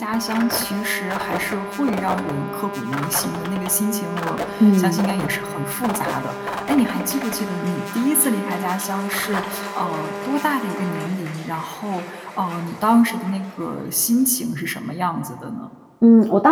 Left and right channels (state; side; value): identical; both; correlation 1.00